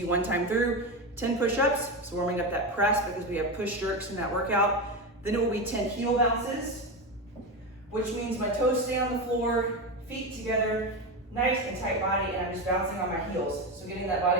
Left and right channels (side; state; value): both; normal; correlation 0.17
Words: 1 time through, 10 push-ups, so warming up that press because we have push jerks in that workout. Then it will be 10 heel bounces, which means my toes stay on the floor, feet together, nice and tight body, and I'm just bouncing on my heels. So getting that